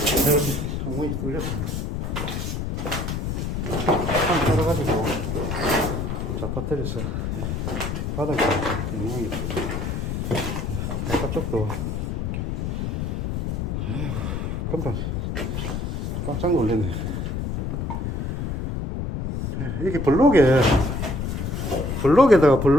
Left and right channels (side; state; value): left; noise; rumble, 2 dB below the sound